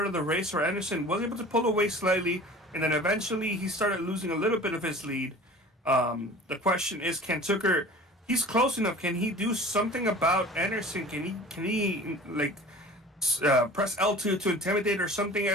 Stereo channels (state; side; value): normal; both; correlation 0.42